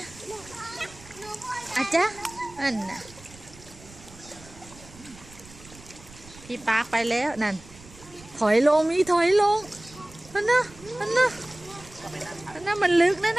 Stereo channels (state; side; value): noise; right; rumble, 21 dB below the sound